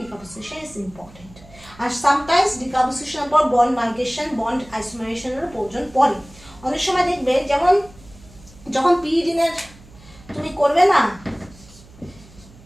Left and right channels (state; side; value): noise; right; hum, 23 dB below the sound